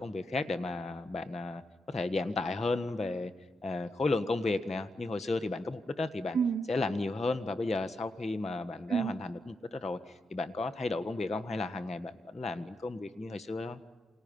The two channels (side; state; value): both; normal; correlation 0.84